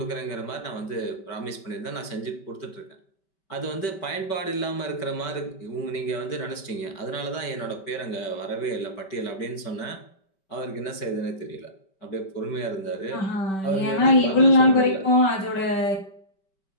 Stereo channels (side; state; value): right; late; 5.2 ms